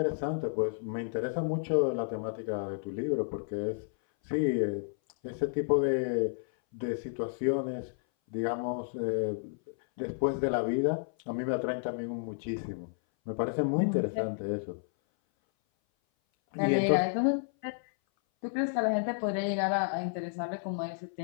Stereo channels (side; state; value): right; silent; 57 dB below the other